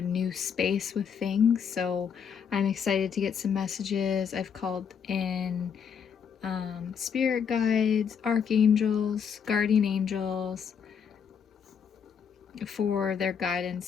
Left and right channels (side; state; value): right; quieter; 7.1 dB